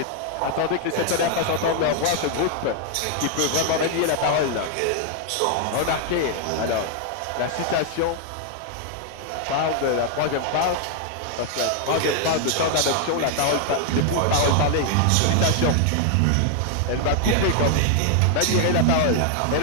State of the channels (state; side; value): different; both; correlation 0.00